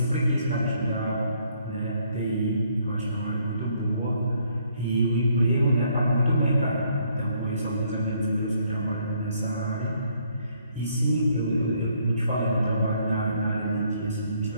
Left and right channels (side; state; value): both; inverted; correlation -0.68